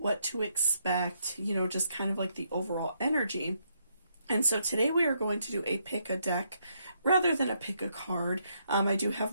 to expect, just kind of like the overall energy. And so today we are going to do a pick a deck rather than a pick a card. I do have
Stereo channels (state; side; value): inverted; both; correlation -0.76